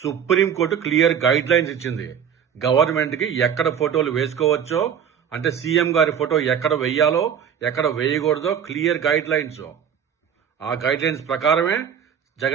సుప్రీంకోర్టు క్లియర్ గైడ్ లైన్స్ ఇచ్చింది. గవర్నమెంట్ కి ఎక్కడ ఫోటోలు వేసుకోవచ్చో, అంటే సీఎం గారి ఫోటో ఎక్కడ వేయాలో ఎక్కడ వేయకూడదో క్లియర్ గైడ్ లైన్స్. ఆ గైడ్ లైన్స్ ప్రకారమే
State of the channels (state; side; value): quieter; left; 8.1 dB